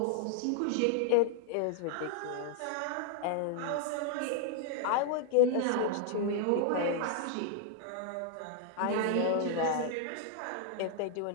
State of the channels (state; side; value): different; both; correlation 0.00